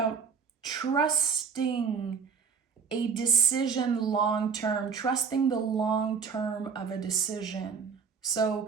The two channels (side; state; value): left; quieter; 6.0 dB